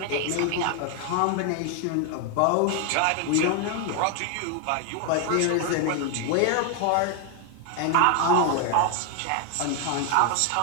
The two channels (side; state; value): both; different; correlation 0.01